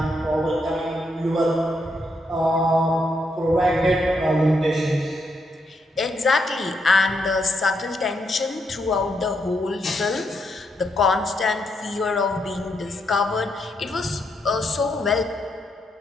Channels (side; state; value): both; normal; correlation 0.79